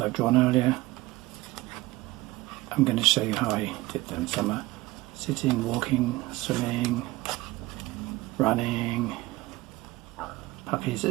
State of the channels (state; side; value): quieter; left; 19.2 dB